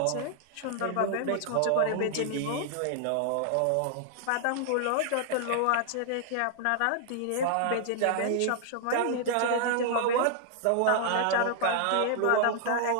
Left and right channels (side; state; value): both; different; correlation -0.01